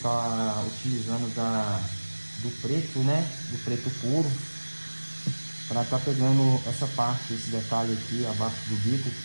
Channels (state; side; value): inverted; both; correlation -1.00